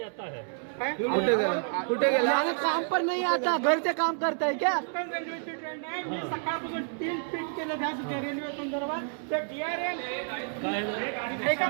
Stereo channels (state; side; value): silent; left; 58 dB below the other